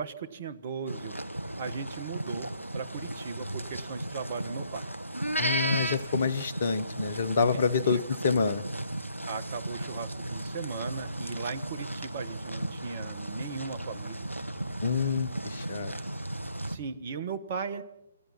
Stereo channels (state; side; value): inverted; both; correlation -0.67